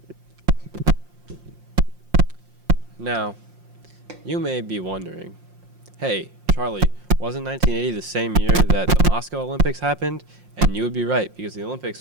Now, you may be wondering, hey, Charlie, wasn't 1980 the same year that the Moscow Olympics happened? And you would be right, because the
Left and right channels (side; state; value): left; late; 5.6 ms